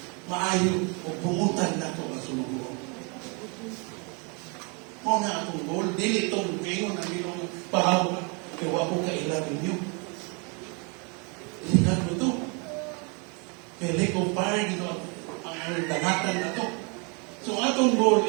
maayo o pumutan na ito ang sumubuo. Mo na akong goal, dili itong ngayon ang ginong pahawa, kaya wako kailan ninyo. Ilikan mo ito. Kaya lake of fire, ang dangatan na ito. So atong goal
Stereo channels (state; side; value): quieter; left; 33.6 dB